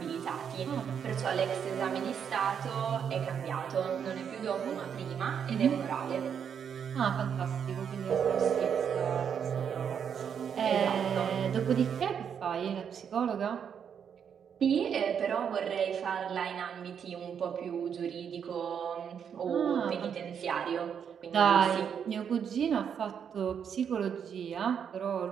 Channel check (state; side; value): quieter; left; 7.7 dB